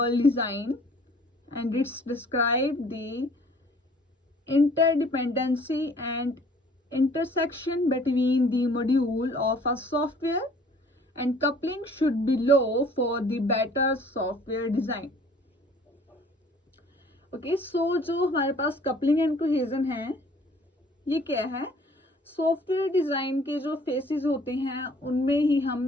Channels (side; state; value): both; normal; correlation 0.54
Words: design and it's describe the interdependency and intersection between the module of a software, and coupling should be low for the better software design. Okay, जो हमारे पास coupling and cohesion है ये क्या है? Software design के जो faces होते हैं उनमें ही